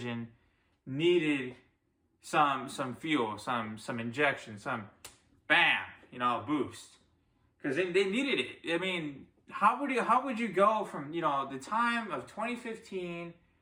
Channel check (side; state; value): both; identical; correlation 1.00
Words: needed some fuel, some injection, some bam, boost. Because they needed it. How would you go from, the time of 2015